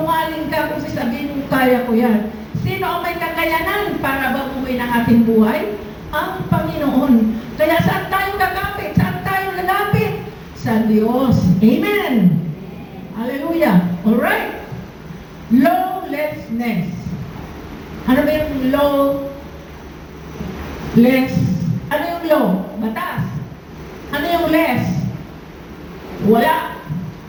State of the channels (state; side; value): identical; both; correlation 1.00